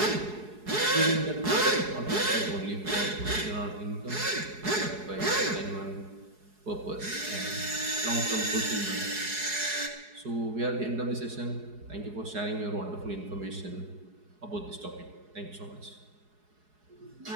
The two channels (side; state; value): left; late; 4.8 ms